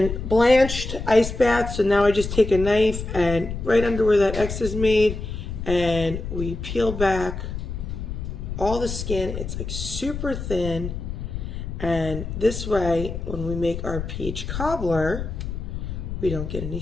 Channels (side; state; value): left; noise; rumble, 6 dB below the sound